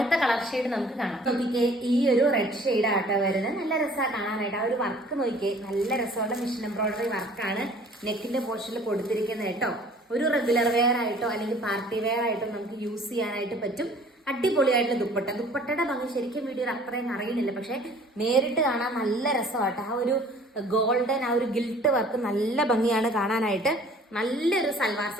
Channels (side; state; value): both; normal; correlation 0.52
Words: കളർ ഷെയ്ഡ് നമുക്ക് കാണാം. നോക്കിക്കേ, ഈ ഒരു റെഡ് ഷെയ്ഡ് ആട്ടോ വരുന്നത്. നല്ല രസമാണ് കാണാനായിട്ട്. ആ ഒരു വർക്ക് നോക്കിക്കേ, നല്ല രസമുള്ള മിഷൻ എംബ്രോയിഡറി വർക്കാണ് നെക്കിന്റെ പോർഷനിൽ കൊടുത്തിരിക്കുന്നത് കേട്ടോ. ഒരു റെഗുലർ വെയർ ആയിട്ടോ അല്ലെങ്കിൽ പാർട്ടി വെയർ ആയിട്ടോ നമുക്ക് യൂസ് ചെയ്യാനായിട്ട് പറ്റും. അടിപൊളിയായിട്ടുള്ള ദുപ്പട്ട. ദുപ്പട്ടയുടെ ഭംഗി ശരിക്കും വീഡിയോയിൽ അത്രയും അറിയുന്നില്ല, പക്ഷെ നേരിട്ട് കാണാൻ നല്ല രസമാട്ടോ. ആ ഒരു ഗോൾഡൻ, ആ ഒരു ഗിൽട്ട് വർക്ക് നല്ല ഭംഗിയാണ് കാണാനായിട്ട്. നല്ലൊരു സൽവാർ